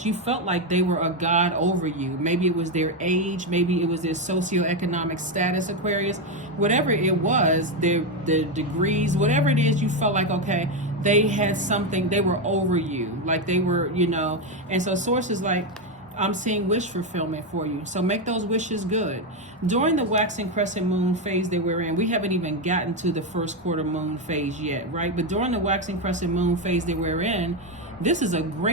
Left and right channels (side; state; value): both; normal; correlation 0.08